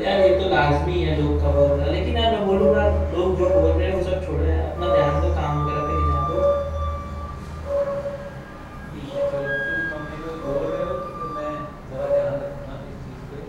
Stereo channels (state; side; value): identical; both; correlation 1.00